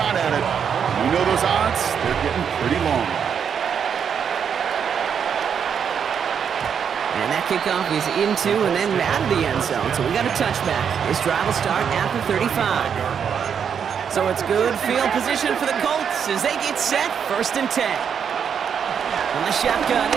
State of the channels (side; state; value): left; quieter; 7.4 dB